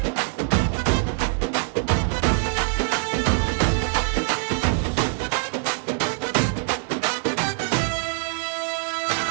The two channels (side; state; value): left; silent; digital silence